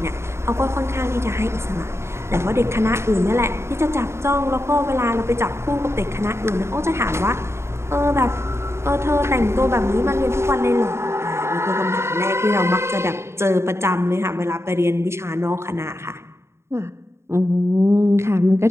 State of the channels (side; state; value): left; late; 0.13 ms